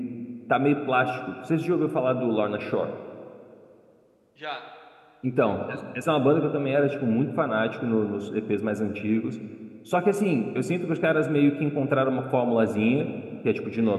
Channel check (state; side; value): identical; both; correlation 1.00